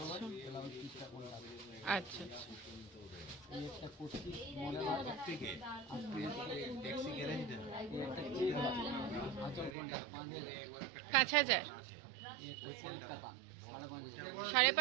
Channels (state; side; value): drops out; left; at 9.7 s